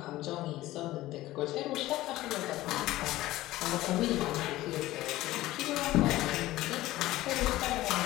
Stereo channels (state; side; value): quieter; right; 16.5 dB